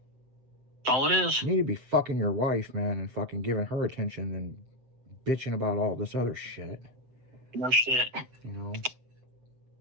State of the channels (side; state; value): left; late; 7.8 ms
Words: That's all it is. You need to be fucking your wife, man, and fucking giving her attention and bitching about all this other shit. No shit. You know?